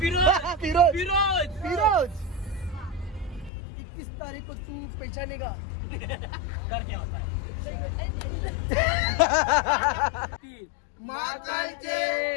फिरोज 21 तारीख को तू पहचानेगा. माताचे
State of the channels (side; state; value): right; drops out; at 3.5 s